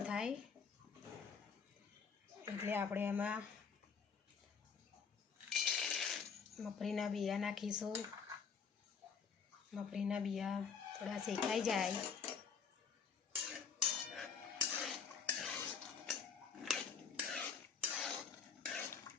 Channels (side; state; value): right; quieter; 6.2 dB